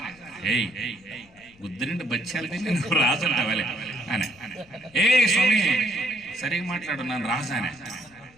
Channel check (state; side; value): noise; left; rumble, 28 dB below the sound